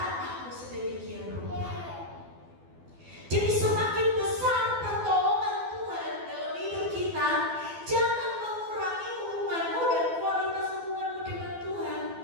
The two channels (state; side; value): late; left; 12 ms